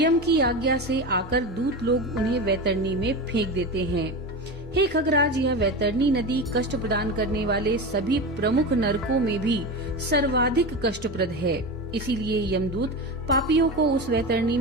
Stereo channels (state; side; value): normal; both; correlation 0.23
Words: की आज्ञा से आकर दूत लोग उन्हें वैतरणी में फेंक देते हैं। हे खगराज, यह वैतरणी नदी कष्ट प्रदान करने वाले सभी प्रमुख नरकों में भी सर्वाधिक कष्टप्रद है, इसीलिए यमदूत पापियों को उस वैतरणी